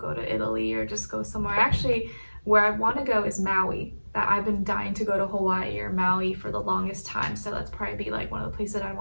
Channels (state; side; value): inverted; both; correlation -1.00